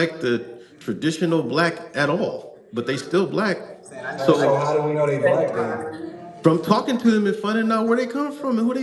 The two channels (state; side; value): identical; both; correlation 1.00